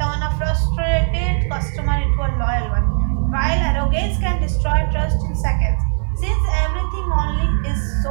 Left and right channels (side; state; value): left; silent; 67 dB below the other